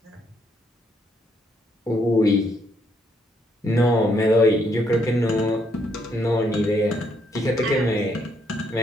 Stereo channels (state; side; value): normal; both; correlation 0.73